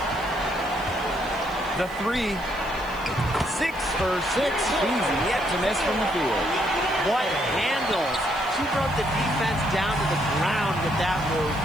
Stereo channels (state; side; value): noise; right; hiss, 23 dB below the sound